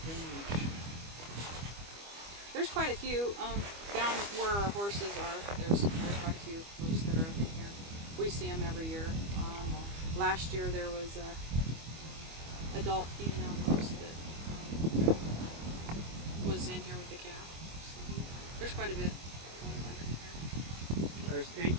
There's quite a few down where our horses are. There's quite a few moose that are up in here. We see them every year. Last year there was a adult female moose that was in here with the calf. So there's quite a bit. There's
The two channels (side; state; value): left; late; 25 ms